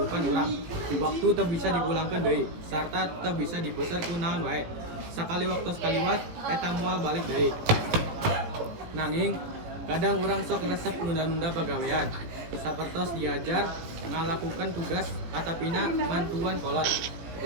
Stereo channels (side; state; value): left; late; 17 ms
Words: urang. Waktu teu bisa dipulangkeun deui sarta teu bisa dipeser ku naon wae. Sakali waktos kaliwat eta moal balik deui. Nanging kadang urang sok resep nunda-nunda pagawean. Sapertos diajar ngalakukan tugas atapina mantuan kolot.